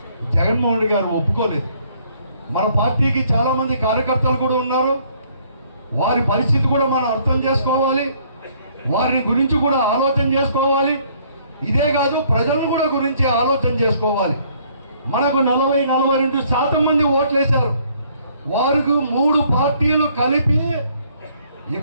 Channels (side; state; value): both; inverted; correlation -0.63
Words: జగన్మోహన్ రెడ్డి గారు ఒప్పుకోలేదు. మన పార్టీకి చాలా మంది కార్యకర్తలు కూడా ఉన్నారు, వారి పరిస్థితి కూడా మనం అర్థం చేసుకోవాలి, వారిని గురించి కూడా ఆలోచన చేసుకోవాలి. ఇదే కాదు, ప్రజలను కూడా గురించి ఆలోచన చేసుకోవాలి. మనకు 40-42% మంది ఓట్లు వేశారు. వారికి 3 పార్టీలు కలిపి